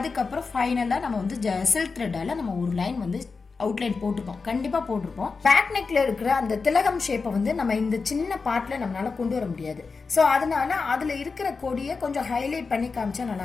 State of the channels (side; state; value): right; quieter; 4.6 dB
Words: ஃபைனலாக நம்ம வந்து சில்க் த்ரெட்டால் நம்ம ஒரு லைன் வந்து அவுட்லைன் போட்டிருப்போம், கண்டிப்பாக போட்டிருப்போம். பேக் நெக்ல இருக்கிற அந்த திலகம் ஷேப்பை வந்து நம்ம இந்த சின்ன பார்ட்டில் நம்மளால கொண்டு வர முடியாது. ஸோ அதனால அதில் இருக்கிற கொடியை கொஞ்சம் ஹைலைட் பண்ணி காமிச்சா